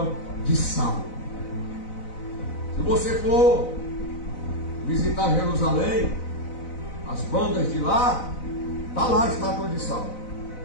de sal. Se você for visitar Jerusalém, as bandas de lá, está lá a estátua de sal.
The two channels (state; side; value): late; right; 4.0 ms